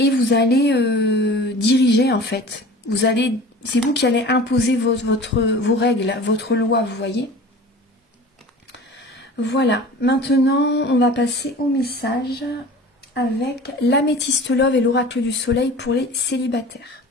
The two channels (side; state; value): both; normal; correlation 0.40